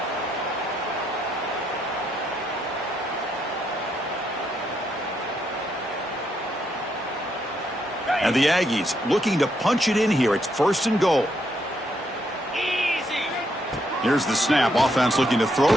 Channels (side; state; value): both; normal; correlation 0.76